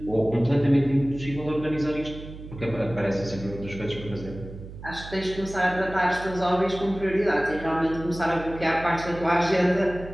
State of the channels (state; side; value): noise; right; hum, 13 dB below the sound